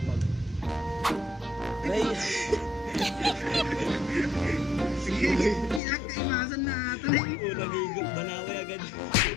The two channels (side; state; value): right; drops out; at 5.8 s